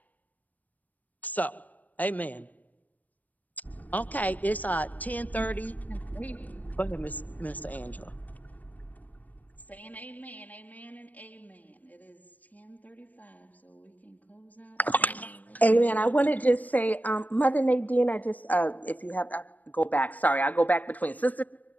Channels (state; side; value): late; right; 0.078 ms